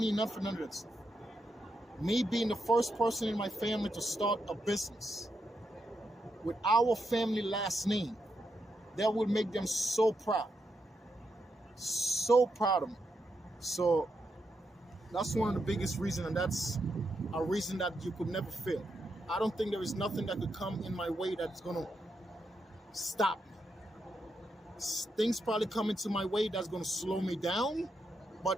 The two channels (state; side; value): normal; both; correlation 0.83